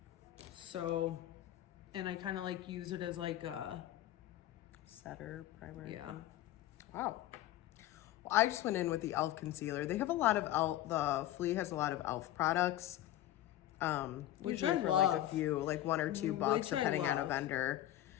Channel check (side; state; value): right; quieter; 13.7 dB